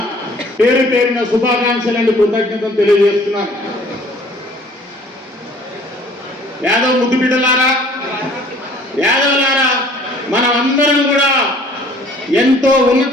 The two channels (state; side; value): normal; both; correlation 0.54